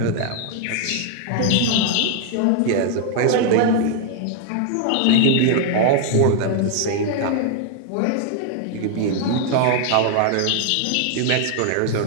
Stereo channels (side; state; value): both; different; correlation 0.00